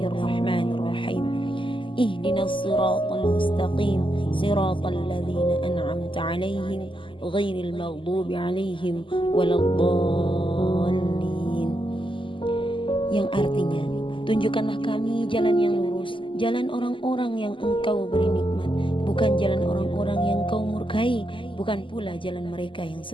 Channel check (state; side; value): late; right; 0.25 ms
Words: Ihdinas siratal mustaqim siratal ladzina an'amta 'alaihim ghairil maghdubi 'alaihim waladdallin. Yang artinya, tunjukkanlah kami jalan yang lurus, jalan orang-orang yang engkau beri nikmat, bukan jalan orang-orang yang kau murkai, bukan pula jalan mereka yang